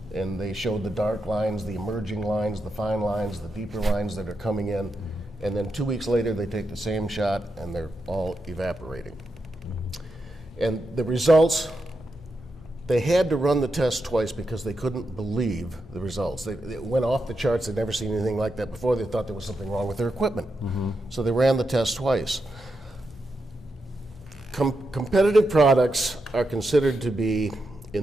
and they showed the dark lines, the emerging lines, the fine lines, the deeper lines that are coming in. And then 2 weeks later, they take the same shot, and they're all evaporating. And the results, they had to run the test twice because they couldn't believe the results. It went off the charts. They'd never seen anything like that before. They thought there was something wrong with their equipment. So they ran the test twice. Competitive products are considered to be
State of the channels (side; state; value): both; normal; correlation 0.86